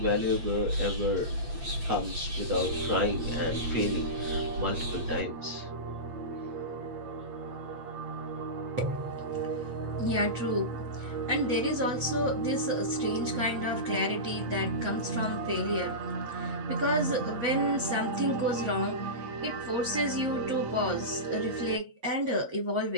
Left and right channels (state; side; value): late; left; 8.5 ms